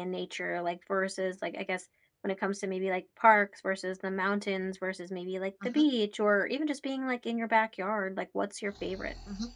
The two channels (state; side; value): identical; both; correlation 1.00